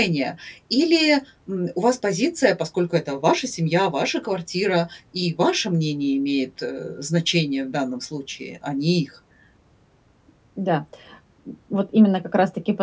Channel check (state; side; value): identical; both; correlation 1.00